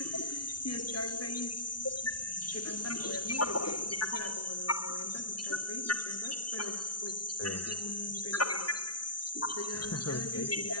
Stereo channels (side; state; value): right; late; 0.70 ms